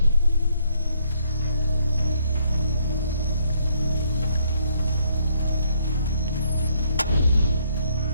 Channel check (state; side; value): inverted; both; correlation -0.70